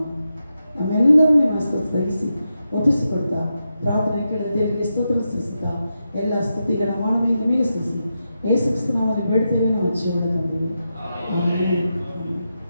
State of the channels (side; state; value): both; inverted; correlation -0.88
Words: ನಮ್ಮೆಲ್ಲರೂ ನಿಮ್ಮ ಸ್ಥಗಿಸಿ ಒಪ್ಪಿಸಿಕೊಡ್ತಾ ಪ್ರಾರ್ಥನೆ ಕೇಳಿದ ದೇವರಿಗೆ ಸ್ತೋತ್ರ ಸಲ್ಲಿಸುತ್ತಾ ಎಲ್ಲ ಸ್ತುತಿಗಳ ಮಾನವೇ ನಿಮಗೆ ಸಲ್ಲಿಸಿ ಯೇಸು ಕ್ರಿಸ್ತನ ನಾಮದಲ್ಲಿ ಬೇಡ್ತೇವೆ, ನಾವು ಜೀವನ ತಂದಿವೆ.